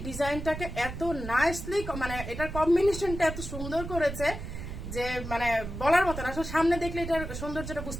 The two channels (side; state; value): right; noise; rumble, 8 dB below the sound